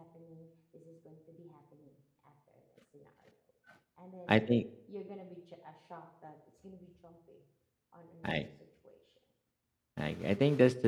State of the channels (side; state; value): both; identical; correlation 1.00